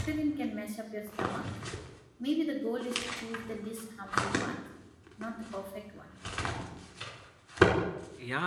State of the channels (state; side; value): identical; both; correlation 1.00